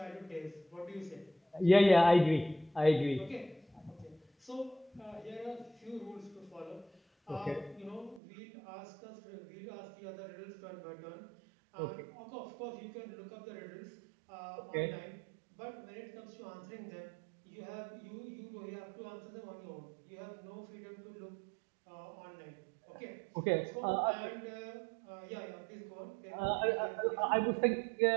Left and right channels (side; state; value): left; drops out; at 8.2 s